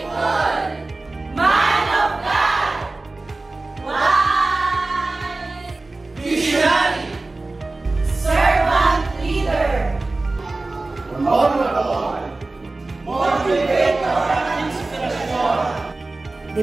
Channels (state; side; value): quieter; left; 3.2 dB